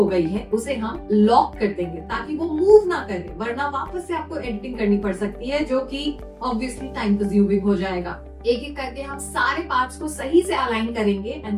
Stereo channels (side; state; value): both; identical; correlation 1.00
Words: गई है उसे हम लॉक कर देंगे ताकि वो मूव ना करे, वरना वापस से आपको एडिटिंग करनी पड़ सकती है जो कि ऑब्वियसली टाइम कंज्यूमिंग हो जाएगा। एक एक करके हम सारे पार्ट्स को सही से अलाइन करेंगे